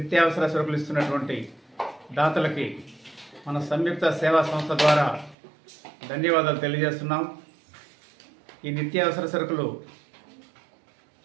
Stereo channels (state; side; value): drops out; left; at 5.4 s